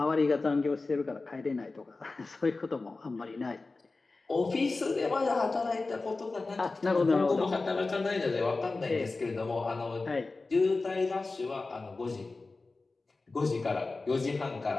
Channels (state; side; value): quieter; right; 3.6 dB